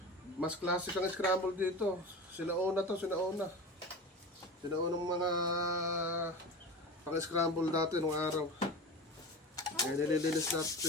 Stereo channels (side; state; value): both; normal; correlation 0.30